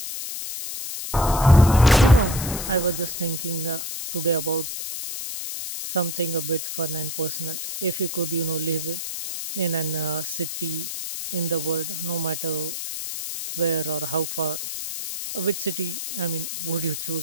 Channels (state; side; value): noise; left; hiss, 6 dB below the sound